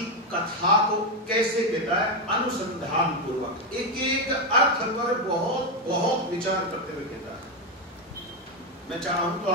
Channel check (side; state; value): both; normal; correlation 0.07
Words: कथा को कैसे कहता है? अनुसंधान पूर्वक, एक एक अर्थ पर बहुत बहुत विचार करते हुए कहता है। मैं चाहूं तो